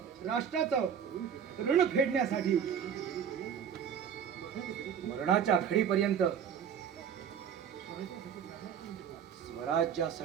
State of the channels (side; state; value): left; quieter; 8.0 dB